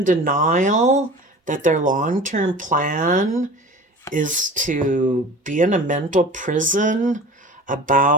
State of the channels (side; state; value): both; normal; correlation 0.39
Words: denial that their long-term plan is to be in a mental prison